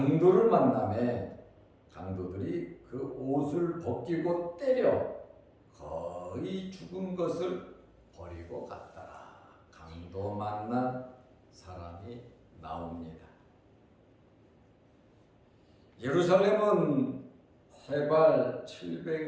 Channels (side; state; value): both; identical; correlation 1.00